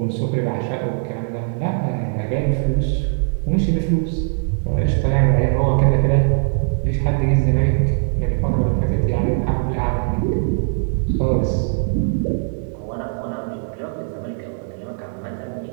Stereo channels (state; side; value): silent; left; 64 dB below the other